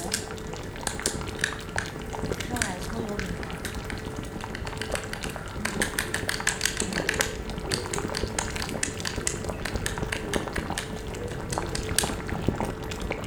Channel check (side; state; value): both; identical; correlation 1.00